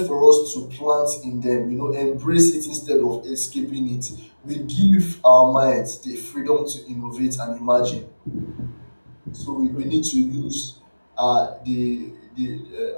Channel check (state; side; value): inverted; both; correlation -1.00